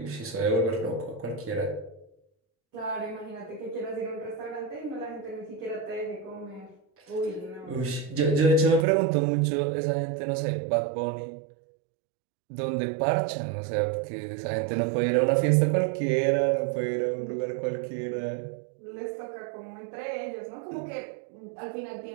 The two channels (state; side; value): drops out; left; at 8.8 s